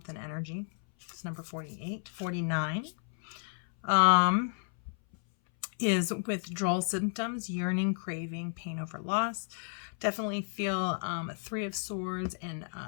and energy. It's number 48. 49 is withdrawal symptoms, yearning, craving, pain over loss. Definitely feel Three of Swords and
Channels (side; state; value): right; silent; 56 dB below the other